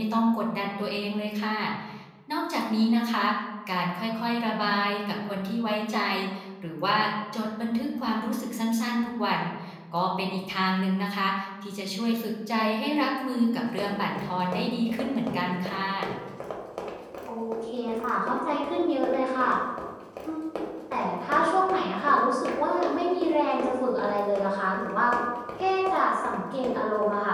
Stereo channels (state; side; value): identical; both; correlation 1.00